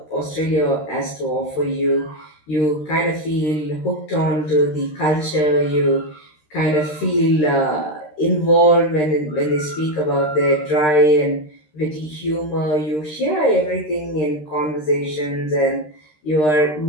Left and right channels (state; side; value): late; right; 13 ms